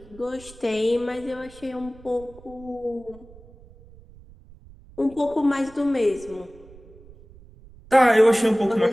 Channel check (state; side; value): noise; right; rumble, 22 dB below the sound